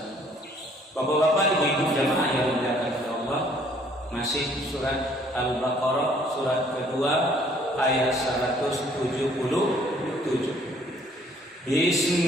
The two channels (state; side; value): normal; both; correlation 0.60